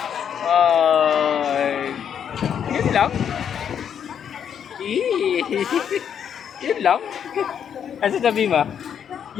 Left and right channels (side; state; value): right; quieter; 8.3 dB